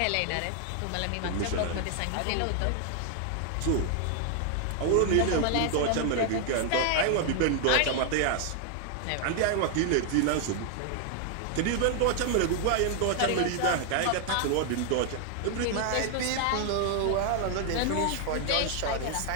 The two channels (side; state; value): both; different; correlation 0.00